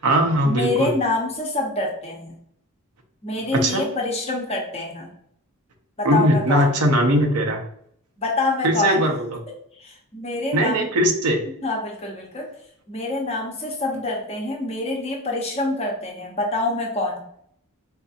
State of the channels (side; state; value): both; normal; correlation 0.33